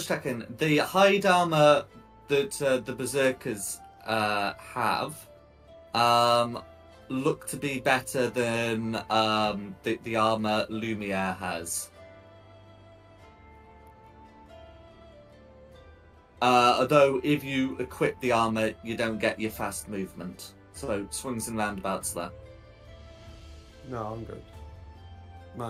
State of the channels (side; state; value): both; identical; correlation 1.00